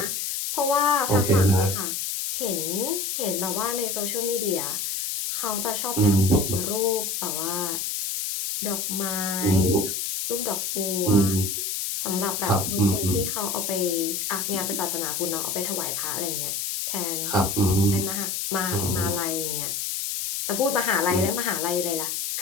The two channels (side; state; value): left; noise; hiss, 2 dB below the sound